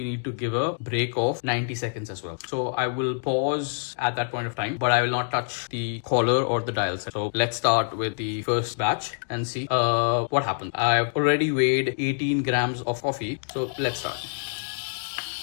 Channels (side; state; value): right; silent; digital silence